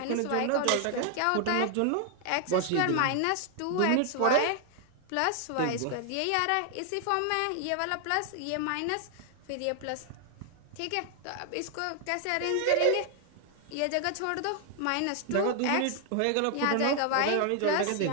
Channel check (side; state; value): both; different; correlation 0.00